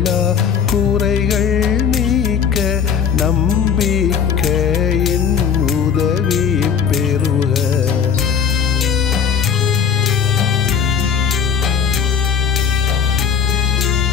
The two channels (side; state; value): right; quieter; 7.1 dB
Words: குறைகள் நீக்க நம்பிக்கையின் உதவி பெறுக.